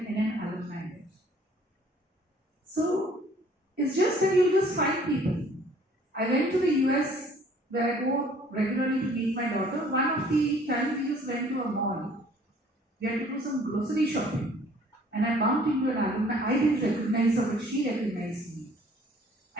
NN alumni there. So, it's just that you just find people. I went to the US where I go regularly to meet my daughter. One of the times we just went to a mall. We had to do some grocery shopping. And I bumped into an alumni. I didn't recognize her, but she recognized me.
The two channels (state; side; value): normal; both; correlation 0.56